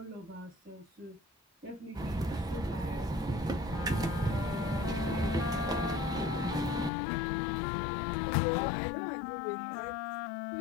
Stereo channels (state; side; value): drops out; right; at 6.9 s